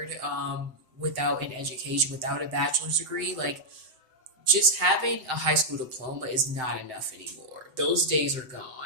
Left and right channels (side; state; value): left; late; 7.7 ms